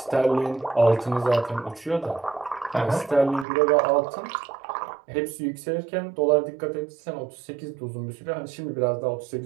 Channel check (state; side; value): drops out; left; at 3.5 s